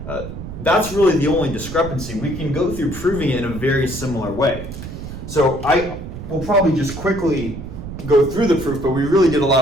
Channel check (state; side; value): noise; right; rumble, 10 dB below the sound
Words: that's really the only discrepancy. We can go through proving it in a very similar way. So I will probably just quickly go through the proof, but we really did a lot